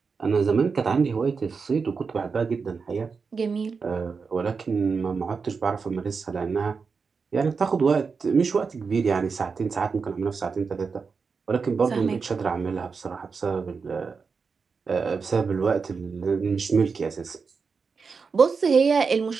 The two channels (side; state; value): left; quieter; 5.2 dB